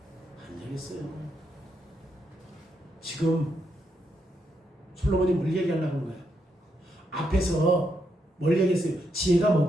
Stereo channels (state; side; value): normal; both; correlation 0.80